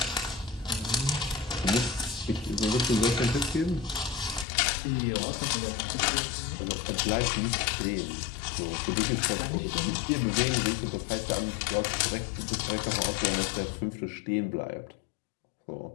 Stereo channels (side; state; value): right; drops out; at 4.5 s